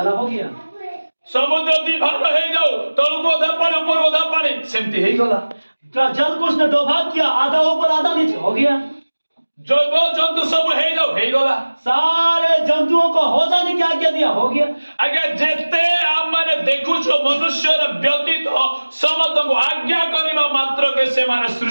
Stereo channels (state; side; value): inverted; both; correlation -1.00